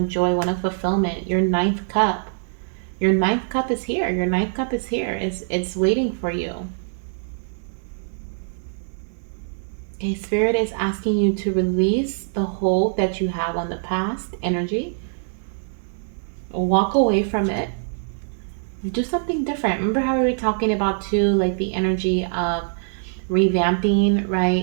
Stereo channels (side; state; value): left; silent; 61 dB below the other